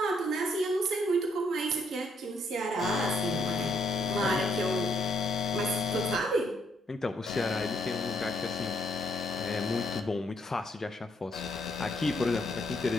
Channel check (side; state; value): both; normal; correlation 0.71